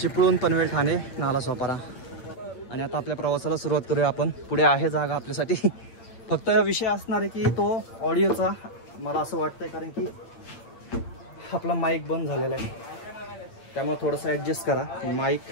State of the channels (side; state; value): right; late; 8.8 ms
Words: चिपळूण, पनवेल, ठाणे, नालासोपारा. आणि आता आपल्या प्रवासाला सुरुवात करूया आपण. पुढे आहे जागा आपल्यासाठी. फक्त विषय असणार आहे की तो ऑडिओचा, मला असं वाटतंय, कारण की आपला माईक बंद झालेला आहे, त्यामुळे थोडंसं ॲडजस्ट करा